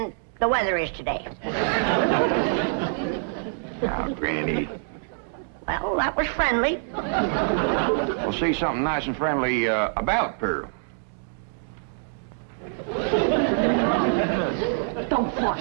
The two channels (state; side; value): silent; left; 61 dB below the other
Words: the weather is today. Now, Granny. Well, that was friendly. Well, say something nice and friendly about Pearl. Don't